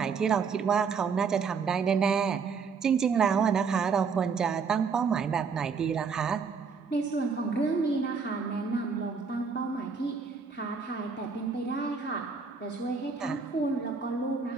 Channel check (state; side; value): quieter; left; 5.5 dB